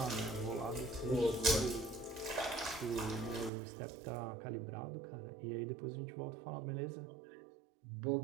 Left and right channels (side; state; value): left; drops out; at 3.5 s